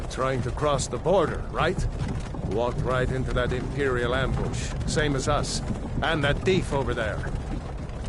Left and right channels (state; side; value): identical; both; correlation 1.00